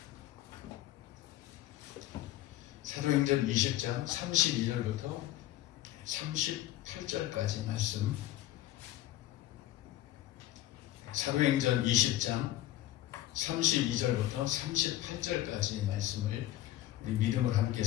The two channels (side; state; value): right; quieter; 14.5 dB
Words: 사도행전 20장 32절부터 38절까지 말씀. 사도행전 20장 32절부터 38절까지 말씀을 우리 믿음을 함께